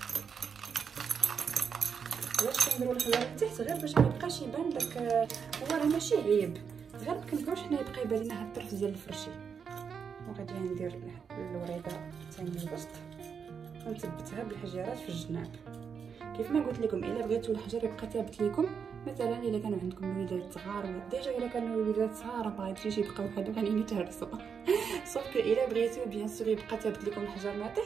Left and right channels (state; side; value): quieter; left; 6.6 dB